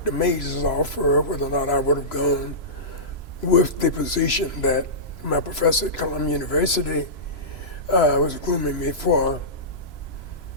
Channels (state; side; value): late; right; 3.0 ms